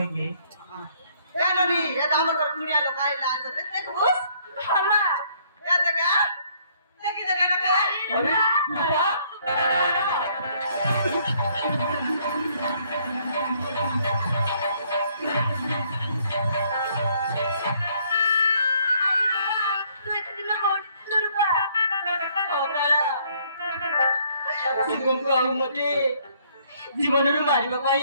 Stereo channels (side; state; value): both; inverted; correlation -0.65